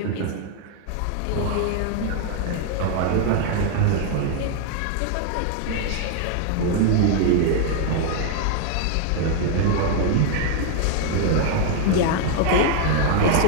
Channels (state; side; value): different; both; correlation 0.00